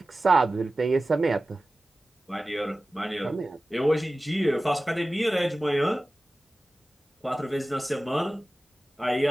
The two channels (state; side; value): normal; both; correlation 0.96